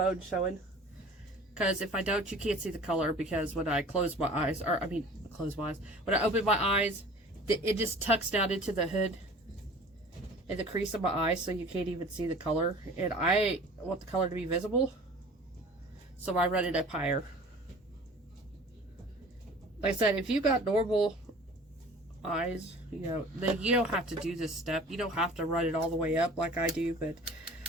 showing. Because if I don't, you can't see the color, because when I close my eyes, or I mean, close my eyes, when I open my eyes, it just tucks down into the hood in the crease of my eye, so you can't even see the color. And I want the color to be visible, so I run it up higher. Like I said, if you got normal eyes, you know, then you don't have to do this step. You don't have to run it all the way up like I do, but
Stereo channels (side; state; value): both; normal; correlation 0.44